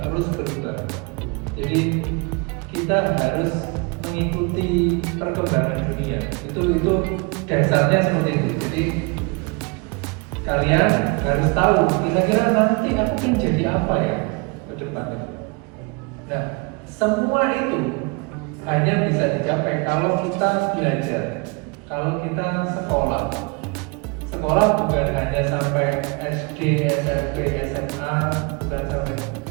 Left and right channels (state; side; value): quieter; left; 30.4 dB